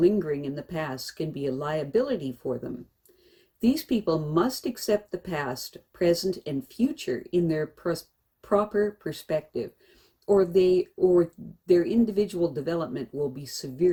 in the past can be a liability for them. These people must accept the past, present, and future in their proper perspective, or their individual development will be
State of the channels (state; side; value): identical; both; correlation 1.00